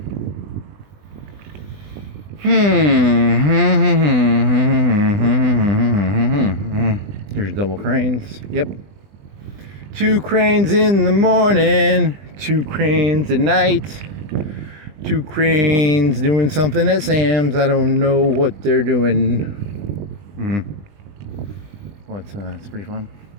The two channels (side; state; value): left; late; 20 ms